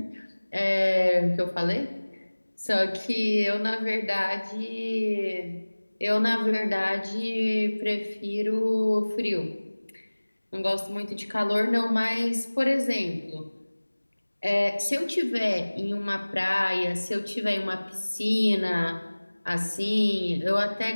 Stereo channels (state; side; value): inverted; both; correlation -1.00